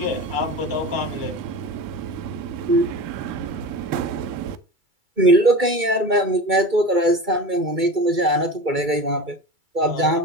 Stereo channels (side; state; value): left; late; 2.3 ms